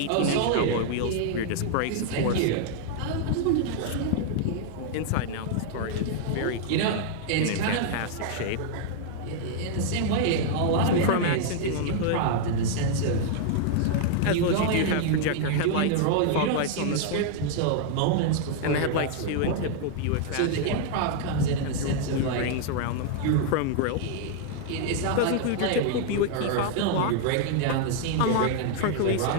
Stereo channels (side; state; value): both; different; correlation -0.01